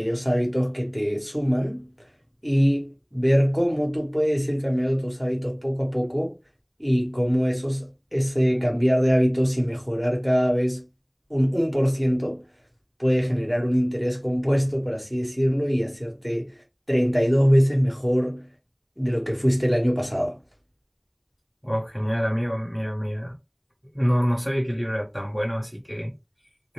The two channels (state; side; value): identical; both; correlation 1.00